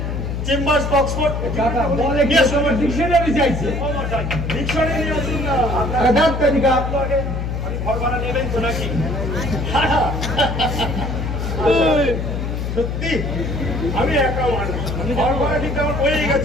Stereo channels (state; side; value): noise; left; hum, 3 dB below the sound